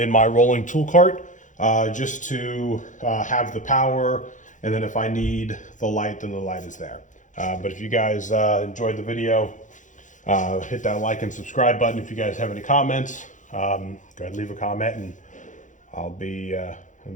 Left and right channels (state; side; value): late; right; 0.37 ms